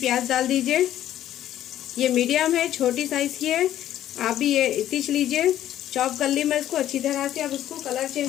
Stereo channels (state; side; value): quieter; right; 12.2 dB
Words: डाल दीजिए। ये मीडियम है, छोटी साइज की है। आप भी ये इतनी लीजिए। चॉप कर ली मैं इसको अच्छी तरह से। अब उसको कलर